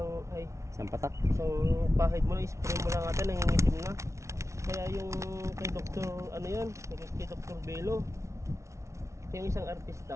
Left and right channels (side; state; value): left; late; 0.14 ms